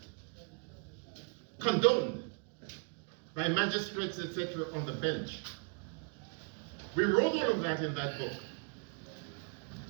condoned by magistrates, etc., on the bench. We wrote all of that in that book.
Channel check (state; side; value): quieter; left; 39.5 dB